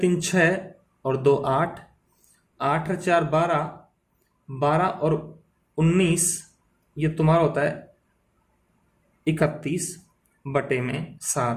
3 6 और 2 8, 8 और 4 12, 12 और 19, ये तुम्हारा होता है 31 बटे में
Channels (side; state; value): both; identical; correlation 1.00